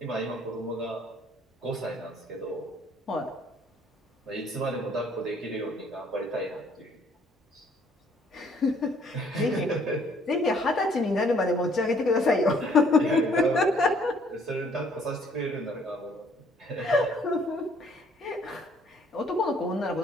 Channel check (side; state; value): both; normal; correlation 0.62